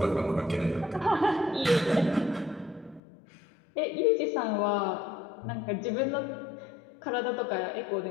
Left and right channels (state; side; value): drops out; right; at 3.0 s